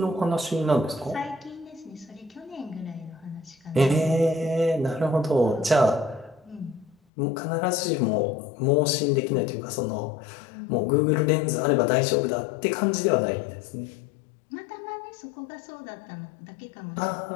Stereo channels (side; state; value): right; drops out; at 7.0 s